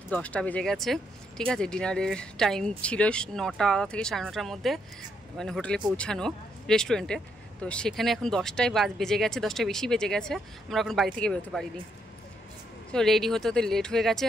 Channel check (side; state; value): both; normal; correlation 0.76